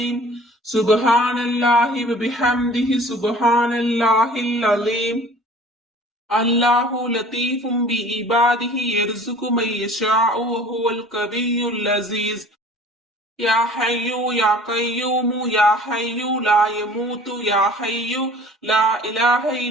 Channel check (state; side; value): normal; both; correlation 0.48